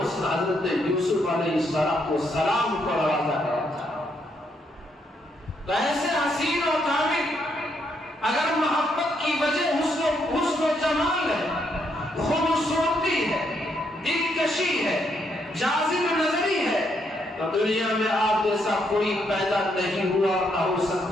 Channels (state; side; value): normal; both; correlation 0.75